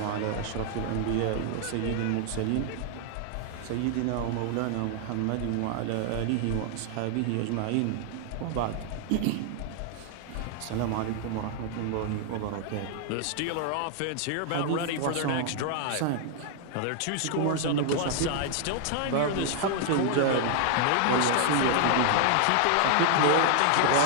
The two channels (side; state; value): both; different; correlation 0.00